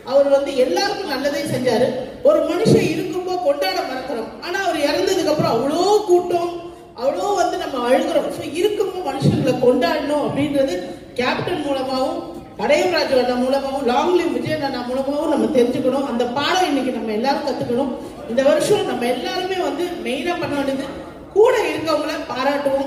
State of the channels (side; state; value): both; identical; correlation 1.00